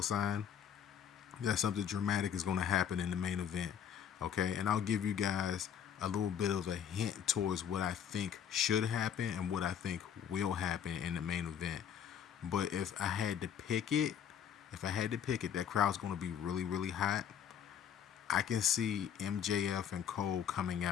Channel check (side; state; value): right; quieter; 8.6 dB